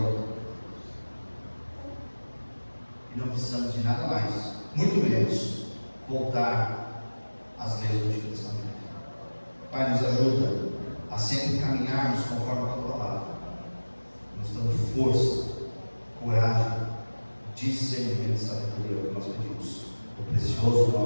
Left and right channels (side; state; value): both; inverted; correlation -1.00